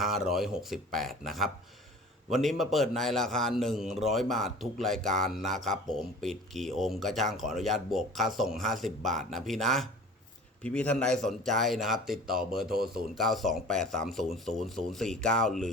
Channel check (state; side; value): normal; both; correlation 0.43